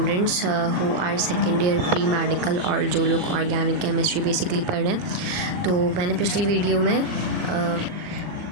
who are second year pre medical और जो लोग ऑर्गेनिक केमिस्ट्री बेसिकली पढ़ रहे हैं। तो मैंने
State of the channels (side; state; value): left; late; 40 ms